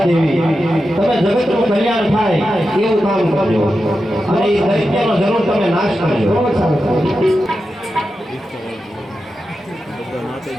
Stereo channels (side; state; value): both; normal; correlation 0.90